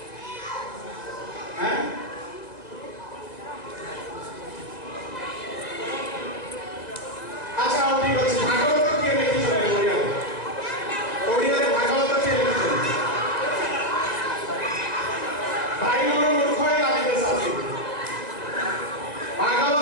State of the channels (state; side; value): late; right; 1.9 ms